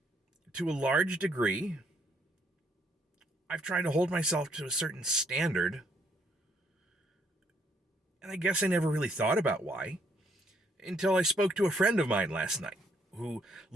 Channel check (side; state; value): both; normal; correlation 0.69